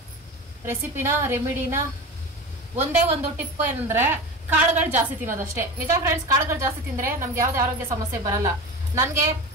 ರೆಮಿಡಿನ, ಒಂದೇ ಒಂದು ಟಿಪ್ ಏನಂದ್ರೆ ಕಾಳುಗಳು ಜಾಸ್ತಿ ತಿನ್ನೋದಷ್ಟೇ. ನಿಜ ಫ್ರೆಂಡ್ಸ್, ಕಾಳುಗಳು ಜಾಸ್ತಿ ತಿಂದ್ರೆ ನಮ್ಗೆ ಯಾವ್ದೇ ಆರೋಗ್ಯ ಸಮಸ್ಯೆ ಬರಲ್ಲ. ನನ್ಗೆ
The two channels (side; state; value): both; normal; correlation 0.29